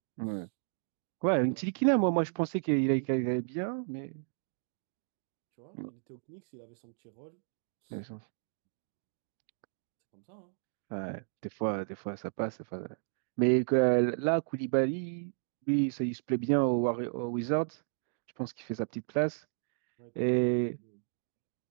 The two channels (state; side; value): silent; left; digital silence